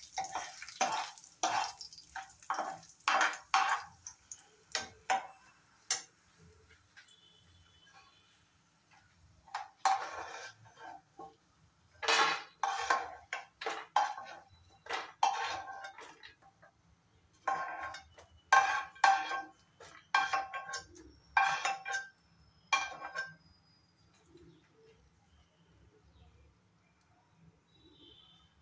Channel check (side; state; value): both; identical; correlation 1.00